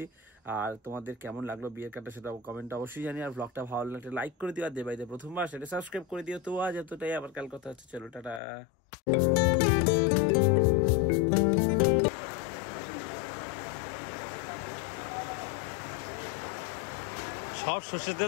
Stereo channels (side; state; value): right; drops out; at 8.4 s